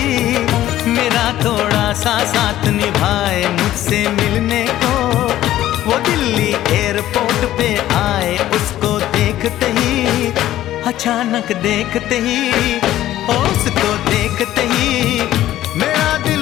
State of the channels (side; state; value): right; quieter; 13.6 dB